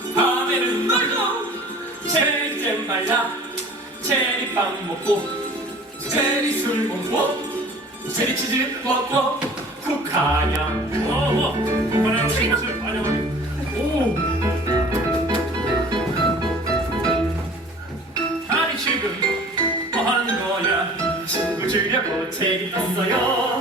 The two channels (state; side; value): normal; both; correlation 0.46